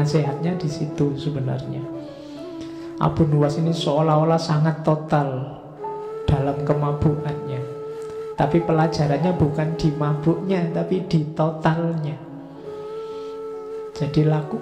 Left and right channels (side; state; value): both; identical; correlation 1.00